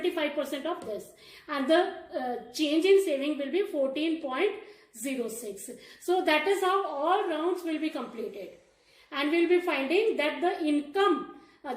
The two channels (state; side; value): identical; both; correlation 1.00